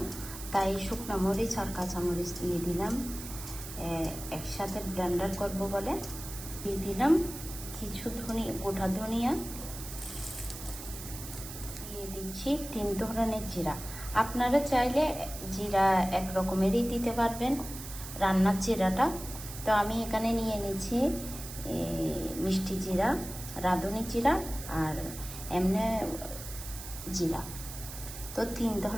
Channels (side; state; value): right; noise; hiss, 11 dB below the sound